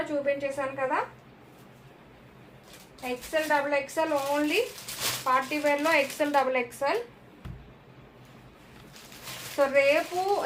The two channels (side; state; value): both; identical; correlation 1.00